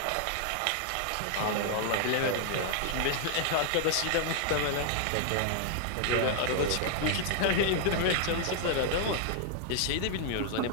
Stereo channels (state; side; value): different; both; correlation 0.00